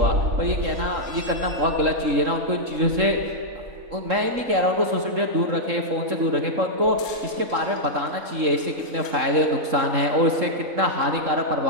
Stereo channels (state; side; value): late; left; 3.7 ms